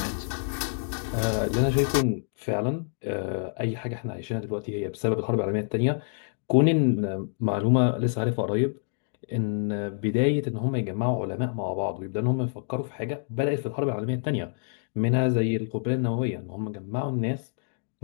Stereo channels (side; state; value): right; silent; digital silence